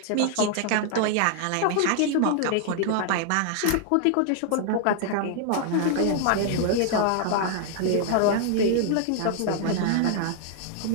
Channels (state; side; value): different; both; correlation 0.00